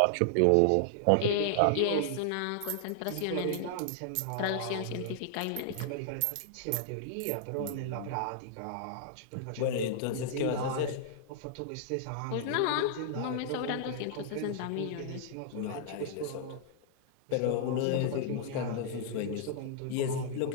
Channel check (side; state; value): both; different; correlation -0.01